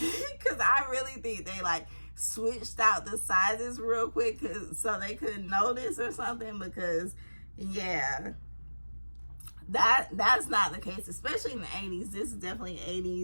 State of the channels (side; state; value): both; inverted; correlation -1.00